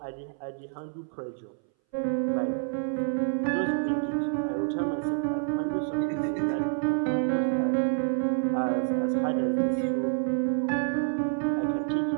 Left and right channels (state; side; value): silent; left; 59 dB below the other